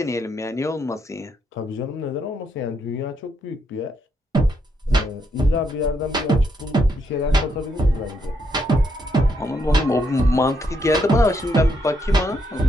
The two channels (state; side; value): normal; both; correlation 0.77